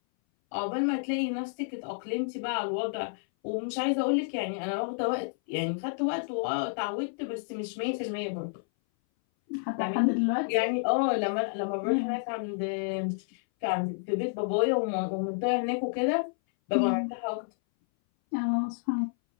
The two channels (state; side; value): silent; right; 58 dB below the other